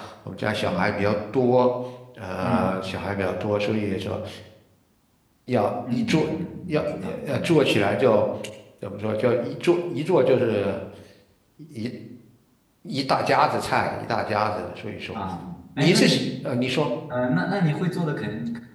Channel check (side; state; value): both; identical; correlation 1.00